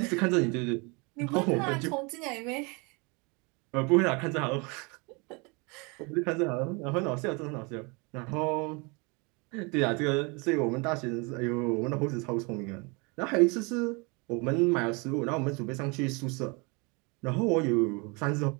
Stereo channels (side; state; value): left; quieter; 29.7 dB